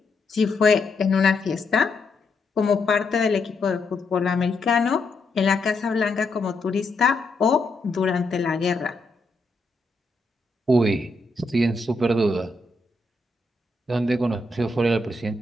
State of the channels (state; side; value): quieter; right; 3.0 dB